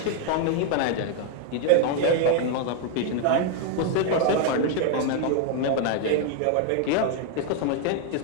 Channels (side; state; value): both; different; correlation 0.00